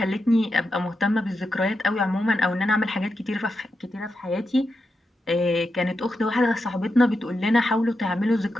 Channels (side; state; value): both; normal; correlation 0.87